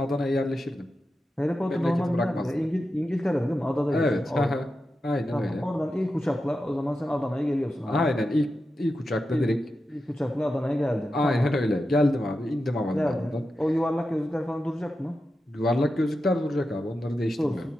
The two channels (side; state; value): both; normal; correlation 0.90